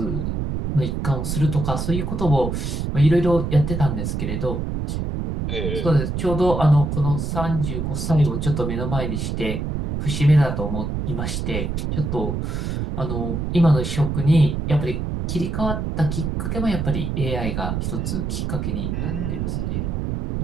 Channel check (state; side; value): noise; right; rumble, 2 dB below the sound